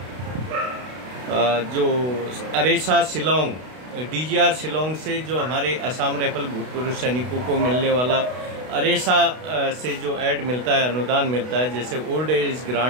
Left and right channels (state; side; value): late; left; 32 ms